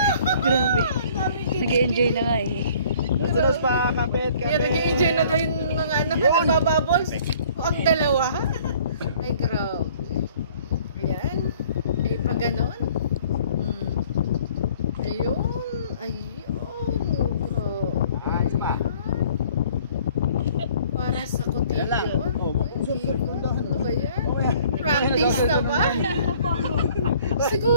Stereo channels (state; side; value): inverted; both; correlation -0.55